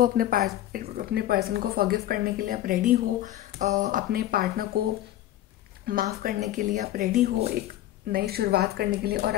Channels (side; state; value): right; quieter; 13.6 dB